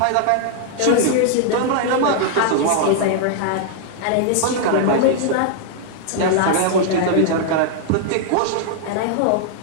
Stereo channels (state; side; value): different; both; correlation 0.00